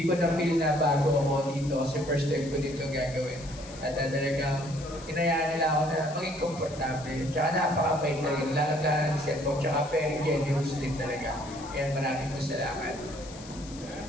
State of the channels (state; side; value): noise; left; hiss, 17 dB below the sound